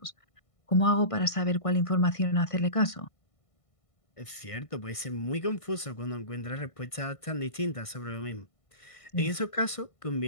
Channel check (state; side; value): late; right; 1.5 ms